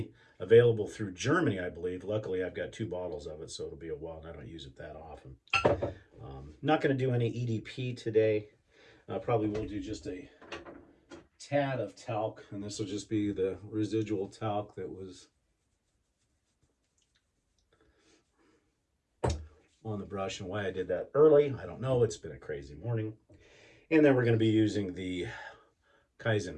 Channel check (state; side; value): identical; both; correlation 1.00